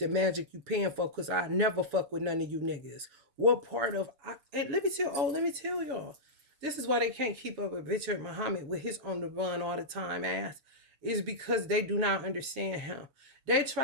magic you paying for, because I never fuck with none of you niggas. What part of... and let me tell y'all. This is why they can't keep up with Richard Muhammad with his on the run all the time ass. Is because they do not understand him. They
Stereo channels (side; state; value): left; late; 6.9 ms